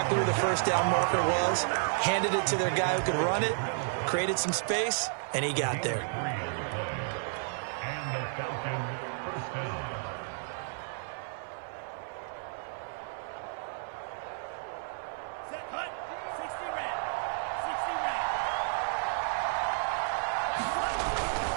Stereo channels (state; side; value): silent; left; digital silence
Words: where the first down marker was, handed it to their guy who could run it, created some space, and he got there.